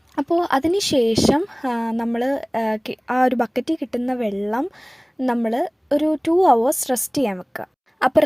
അപ്പോൾ അതിന് ശേഷം നമ്മൾ ആ ഒരു ബക്കറ്റിൽ കിട്ടുന്ന വെള്ളം നമ്മൾ ഒരു 2 hours റെസ്റ്റ് ചെയ്യാൻ വെക്കുക. അപ്പോൾ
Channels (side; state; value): both; identical; correlation 1.00